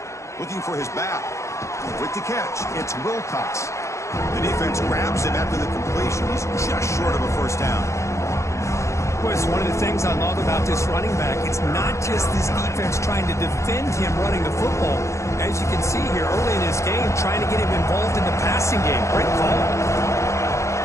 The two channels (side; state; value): right; late; 0.14 ms